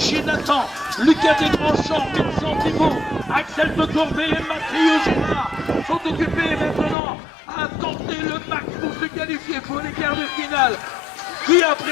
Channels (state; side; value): drops out; right; at 7.0 s